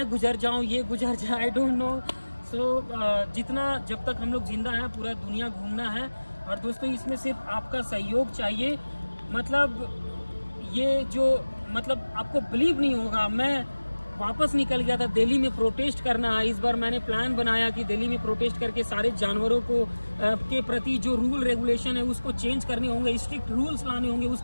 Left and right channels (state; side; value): inverted; both; correlation -1.00